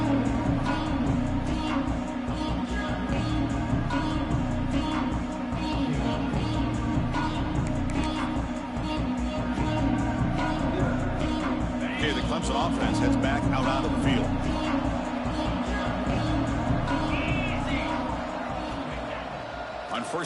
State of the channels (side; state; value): both; identical; correlation 1.00